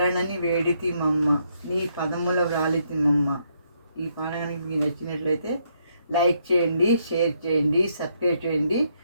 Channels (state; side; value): inverted; both; correlation -0.74